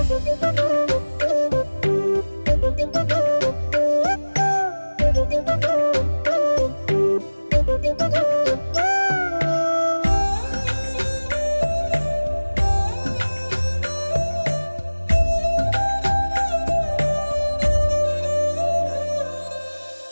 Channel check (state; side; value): inverted; both; correlation -1.00